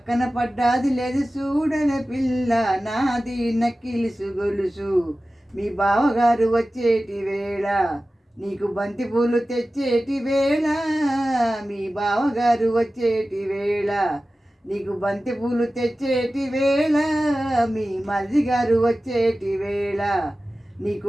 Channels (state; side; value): normal; both; correlation 0.95